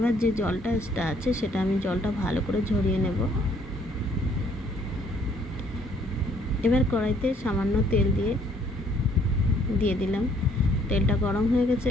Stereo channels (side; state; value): both; normal; correlation 0.63